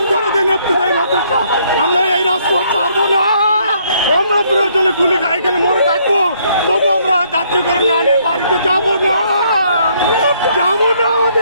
করে দেন ইবতেদায়ী মাদ্রাসা। আমরা এই রাজপথ ছাড়বো না। আমরা প্রয়োজনে গুলি খাই, এখানে মরে থাকবো, তবু আমরা জাতীয়করণ না নিয়ে বাড়িতে যাবো না, যাবো না।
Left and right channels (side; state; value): both; inverted; correlation -0.68